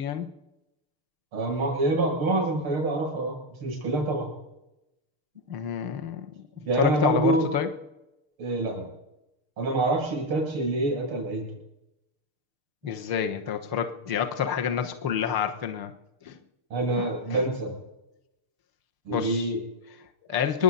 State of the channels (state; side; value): late; left; 6.7 ms